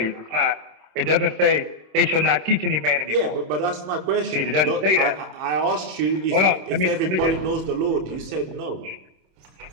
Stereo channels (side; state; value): left; late; 26 ms